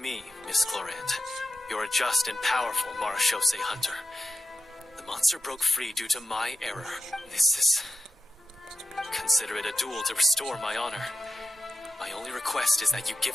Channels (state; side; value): normal; both; correlation 0.91